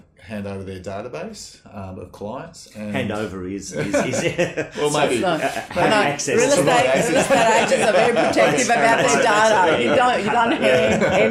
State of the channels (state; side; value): identical; both; correlation 1.00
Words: hand over their database of clients. And hand over is well, maybe access. Real estate agents are very protective about their data. You don't hand